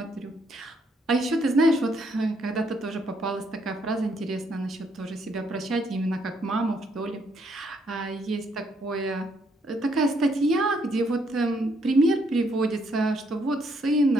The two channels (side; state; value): both; normal; correlation 0.72